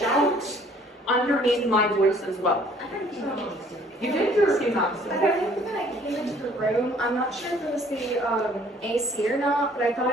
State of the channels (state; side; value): normal; both; correlation 0.57